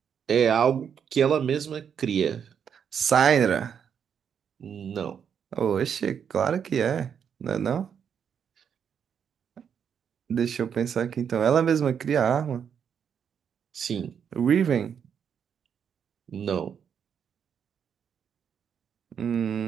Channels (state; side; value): quieter; left; 7.7 dB